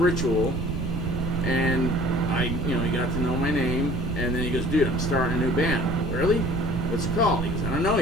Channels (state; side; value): noise; right; rumble, 2 dB below the sound